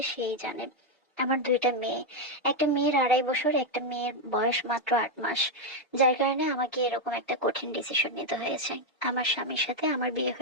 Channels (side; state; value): both; normal; correlation 0.03